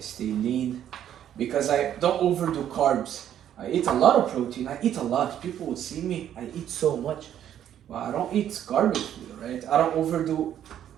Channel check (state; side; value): quieter; left; 10.5 dB